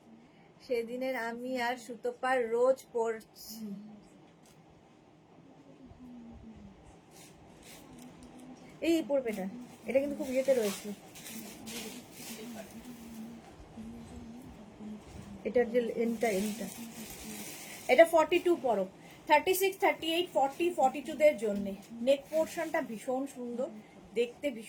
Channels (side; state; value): both; identical; correlation 1.00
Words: সেদিনের, আমি আর সুতোপার রোজ পড়ছি। এই পড়বে এটা কিন্তু খুব ইয়েতে রয়েছে, এটার যে এনটা এটা 42 পরো, 36 38 40 42 দের জন্য। নেক পোর্শনটা ভীষণ সুন্দর দেখতে,